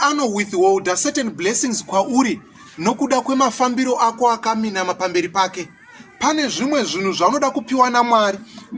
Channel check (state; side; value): identical; both; correlation 1.00